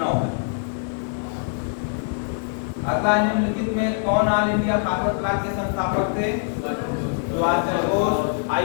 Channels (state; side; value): silent; right; digital silence